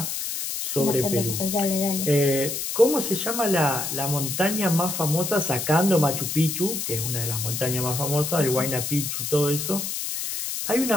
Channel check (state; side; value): noise; left; hiss, 3 dB below the sound